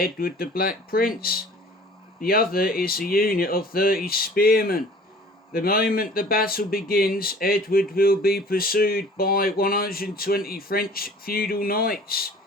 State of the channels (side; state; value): both; normal; correlation 0.48